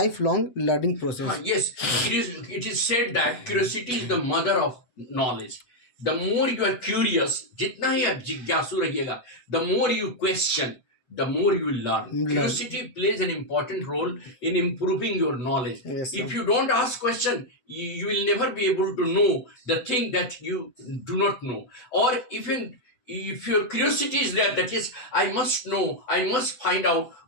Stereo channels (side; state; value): right; late; 8.1 ms